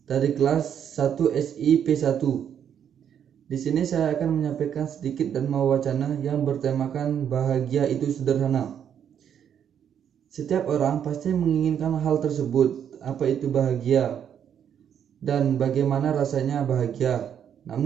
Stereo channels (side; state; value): left; quieter; 8.8 dB